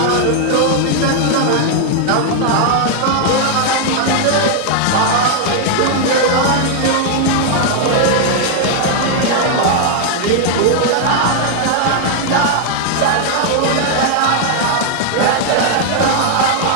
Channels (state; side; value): different; both; correlation 0.00